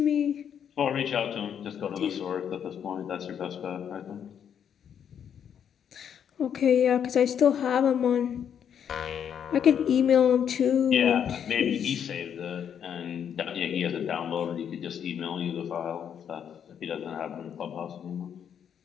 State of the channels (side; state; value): right; quieter; 8.5 dB